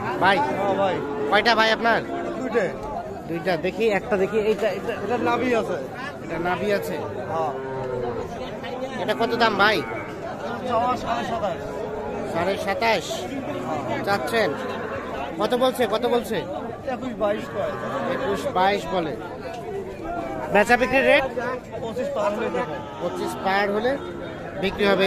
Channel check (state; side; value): identical; both; correlation 1.00